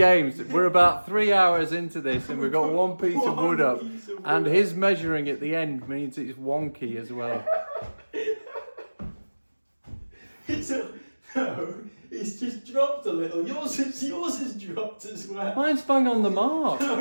We're about 3 hours into this and we've got one piece of wood up. And his measuring at the end means it's wonky as well. No, it's just dropped a little. Yours has dropped as well. Mine's bang on the mark. No,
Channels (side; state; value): both; inverted; correlation -1.00